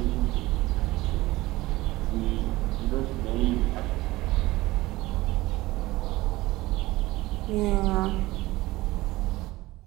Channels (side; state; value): left; quieter; 18.9 dB